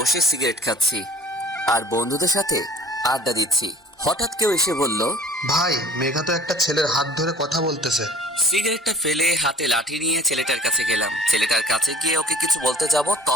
সিগারেট খাচ্ছি আর বন্ধুদের সাথে আড্ডা দিচ্ছি। হঠাৎ কেউ এসে বলল, ভাই মেঘা তো একটা ছেলের হাত ধরে কথা বলতেছে। সিগারেটটা ফেলে হাতে লাঠি নিয়ে ছেলেটার কাছে গেলাম। ছেলেটার কাছে গিয়ে ওকে কিছু বলতে যাব,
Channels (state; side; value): normal; both; correlation 0.48